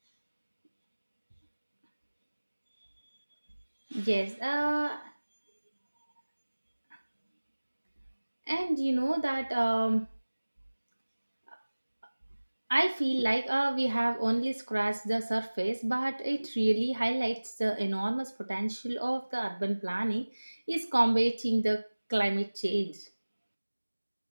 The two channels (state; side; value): inverted; both; correlation -1.00